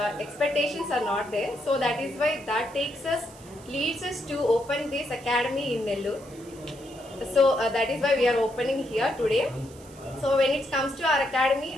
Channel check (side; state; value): right; noise; hiss, 23 dB below the sound